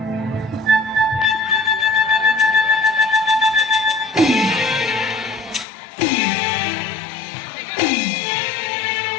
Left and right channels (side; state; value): right; drops out; at 5.7 s